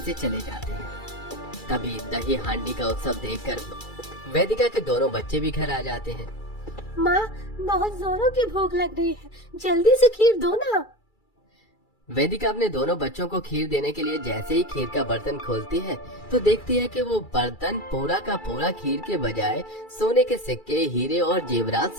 से चले जाते हैं। तभी दही हांडी का उत्सव देखकर वेदिका के दोनों बच्चे भी घर आ जाते हैं। माँ, बहुत जोरों की भूख लग रही है, जल्दी से खीर दो ना। वेदिका अपने दोनों बच्चों को खीर देने के लिए जैसे ही खीर का बर्तन खोलती है तो देखती है कि वो बर्तन पूरा का पूरा खीर के बजाय सोने के सिक्के, हीरे और जेवरात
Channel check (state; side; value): late; right; 2.3 ms